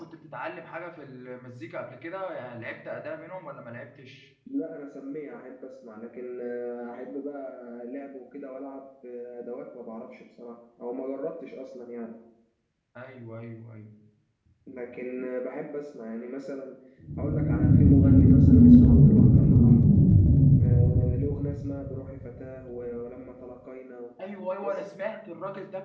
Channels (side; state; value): both; identical; correlation 1.00